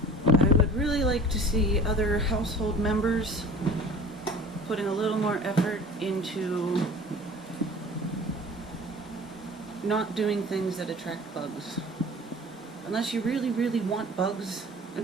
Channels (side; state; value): both; normal; correlation 0.44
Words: I would really like to see other household members putting a little more effort into not doing things that attract bugs. Unless you really, really want bugs